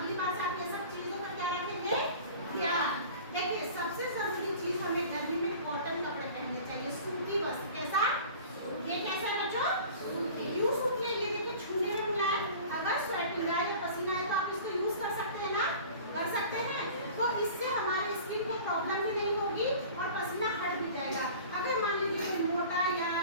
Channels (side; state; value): both; inverted; correlation -0.42